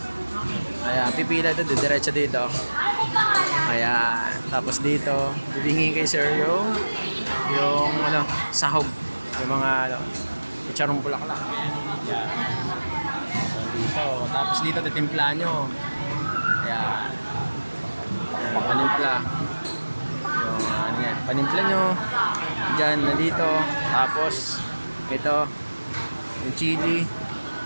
Ayan, pipila dito, diretso dito. Ayan, tapos dito, bibingin kay sir yung ano, sahog. Yung mga charong bulaklak. Ayan. So dito, tapos dito titimpla nyo. Ayan. Panimpla. Yung ano yan, panimpla nyo. Diyan, nandito. Tapos ito, yung chili.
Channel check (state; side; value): inverted; both; correlation -1.00